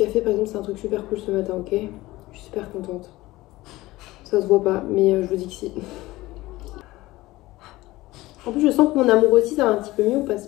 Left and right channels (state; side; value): quieter; right; 18.5 dB